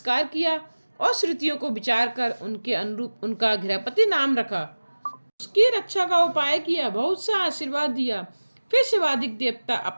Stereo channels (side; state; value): both; inverted; correlation -1.00